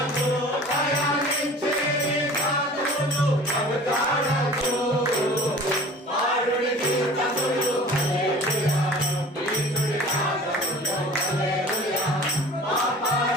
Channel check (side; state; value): both; normal; correlation 0.43